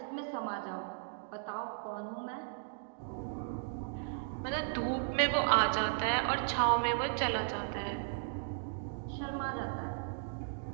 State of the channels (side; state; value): left; silent; digital silence